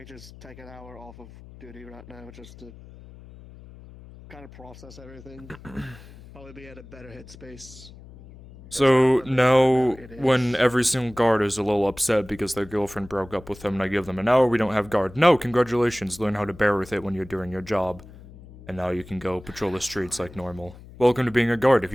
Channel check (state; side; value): noise; left; hum, 19 dB below the sound